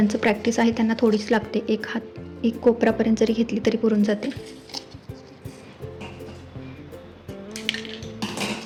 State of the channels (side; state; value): both; identical; correlation 1.00